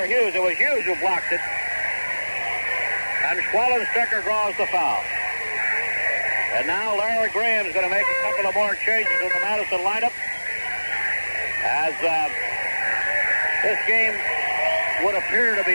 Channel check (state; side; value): inverted; both; correlation -1.00